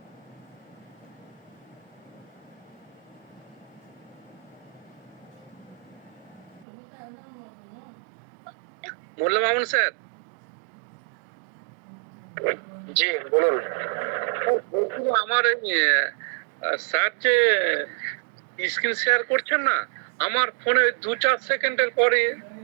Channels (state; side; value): drops out; left; at 6.7 s